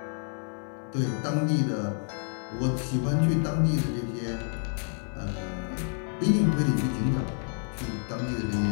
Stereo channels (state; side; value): silent; right; 57 dB below the other